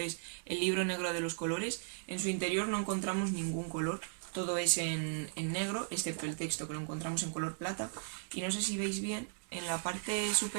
El libro negro de los colores. En su interior no encontramos ningún color, todo es en negro, excepto el texto que lo encontramos en color plata. Y no sé si veis bien, en la parte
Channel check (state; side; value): silent; left; digital silence